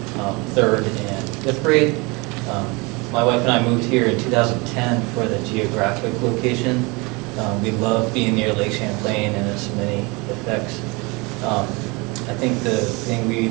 3rd and 5th grade. My wife and I moved here in 2010 for the geographic location. We love being near Lake Champlain and its many effects. I think the thing we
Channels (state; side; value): quieter; left; 27.0 dB